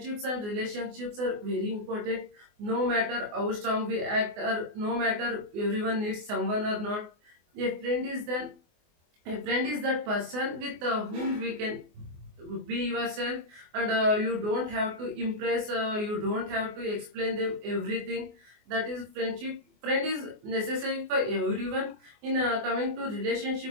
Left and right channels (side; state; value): left; late; 24 ms